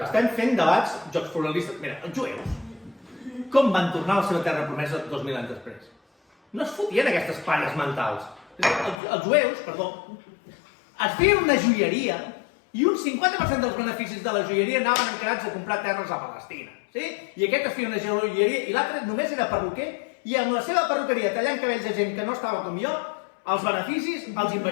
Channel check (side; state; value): right; drops out; at 9.0 s